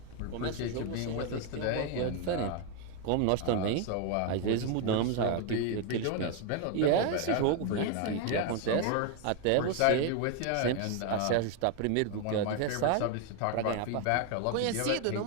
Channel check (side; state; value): both; different; correlation 0.01